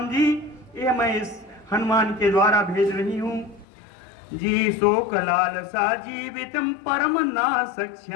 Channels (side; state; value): right; drops out; at 3.7 s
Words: जी, यह मैं इस हनुमान के द्वारा भेज रही हूं। जी शोक लालसा जीवितम परम ना